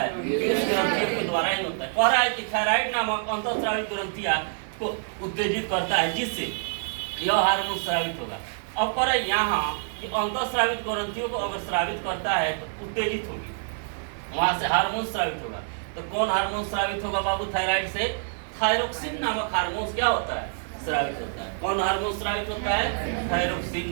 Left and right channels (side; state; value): left; silent; 60 dB below the other